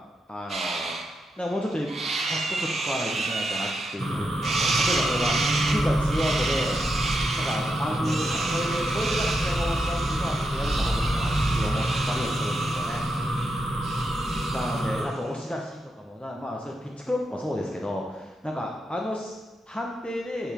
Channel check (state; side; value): normal; both; correlation 0.84